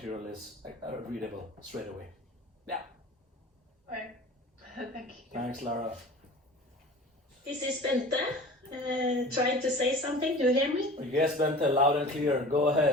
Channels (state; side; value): normal; both; correlation 0.39